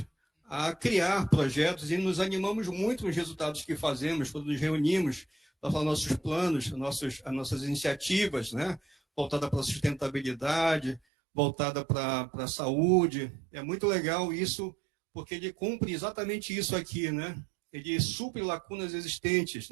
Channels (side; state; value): left; drops out; at 11.0 s